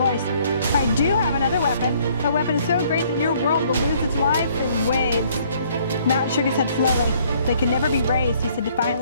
I do have another weapon. A weapon so great that your world will lose its life in waves. Mowat shook his head slowly. They can never be raised, he said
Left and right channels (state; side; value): inverted; both; correlation -0.62